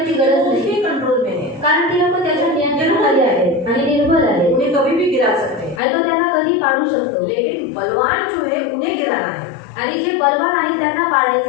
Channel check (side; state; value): right; drops out; at 5.8 s